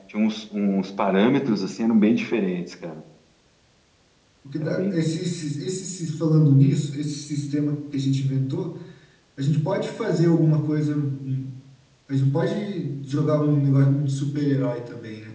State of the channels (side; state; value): both; identical; correlation 1.00